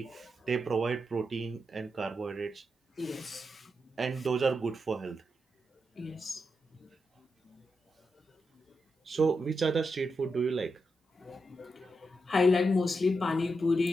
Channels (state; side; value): normal; both; correlation 0.85